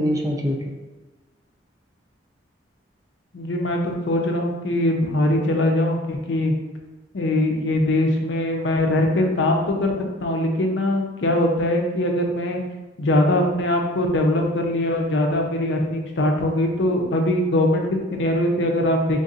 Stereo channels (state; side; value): normal; both; correlation 0.47